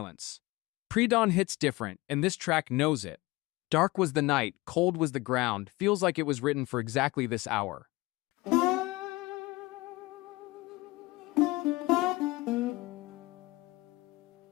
Pre-dawn hits different, and this track knows it. Dark was the night, cold was the ground, feels like it was written for exactly this hour.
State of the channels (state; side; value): quieter; right; 21.6 dB